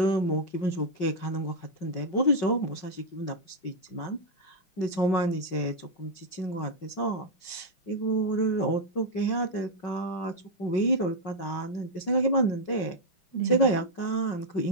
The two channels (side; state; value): right; late; 5.4 ms